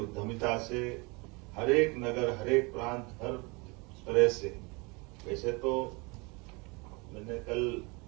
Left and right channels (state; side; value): quieter; left; 28.0 dB